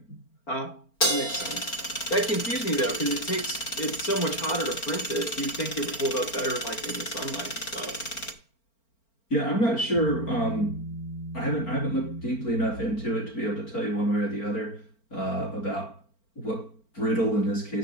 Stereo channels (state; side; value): late; right; 4.4 ms